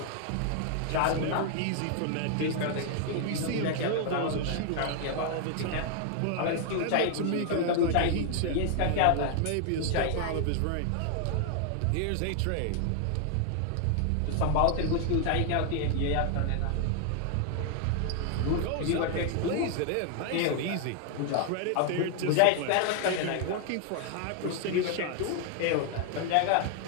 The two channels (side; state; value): both; different; correlation 0.00